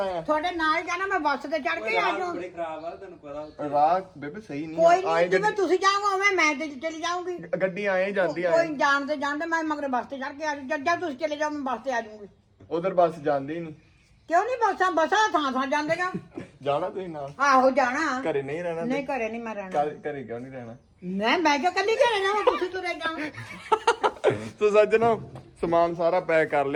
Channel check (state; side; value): identical; both; correlation 1.00